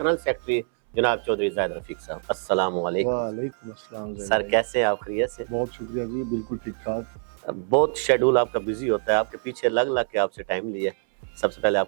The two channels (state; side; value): silent; left; 62 dB below the other